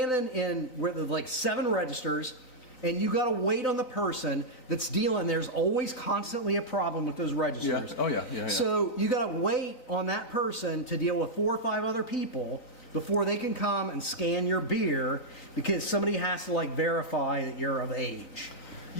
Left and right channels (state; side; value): late; right; 3.9 ms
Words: in where there's like 7 registers and you got to wait on the person that's dealing. There's always constantly a problem with those registers. Yeah. Oh, yeah. So you got to wait on that person to deal with 4 or 5 other people before they can come and scan your beer because somebody has to verify that you're of age.